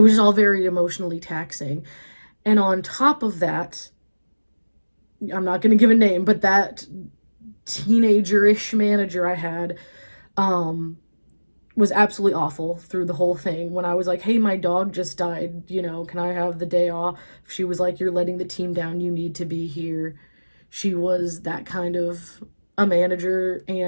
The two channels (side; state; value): both; inverted; correlation -1.00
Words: was all very emotionally taxing. And on top of that, I'm not going to give a name, but that teenager-ish manager I had was absolutely awful through the whole thing. When I was like, hey, my dog just died, can I have the day off? She was like, you're letting the team down, you need to be here. She was that kind of a manager.